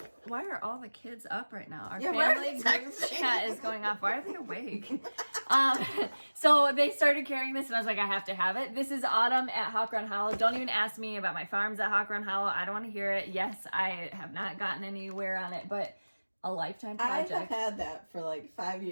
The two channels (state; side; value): inverted; both; correlation -1.00